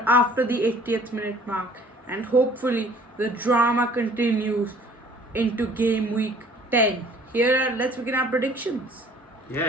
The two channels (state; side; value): normal; both; correlation 0.53